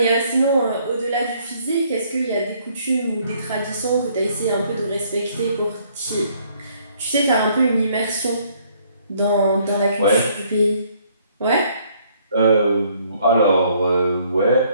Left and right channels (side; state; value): both; inverted; correlation -0.64